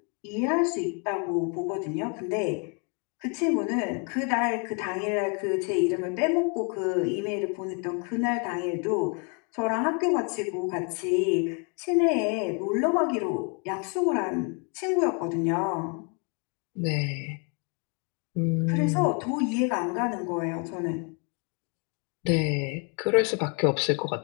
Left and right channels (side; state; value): right; quieter; 36.8 dB